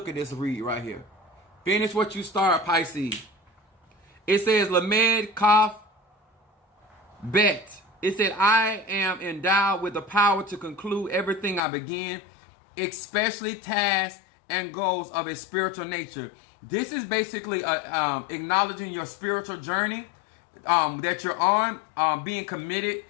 at this read right here. Finish what you start, Pisces. It says, Lamed Kaf Bet. It said, I am endowed with the power to conclude everything I begin, especially tasks and goals of a spiritual nature. This is basically acknowledging your spiritual journey that you're on, being committed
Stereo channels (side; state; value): right; drops out; at 11.6 s